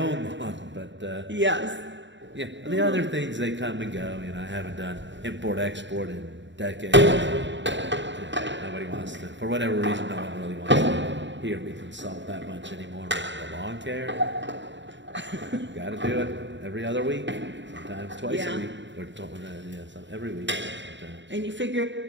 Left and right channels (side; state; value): left; late; 0.53 ms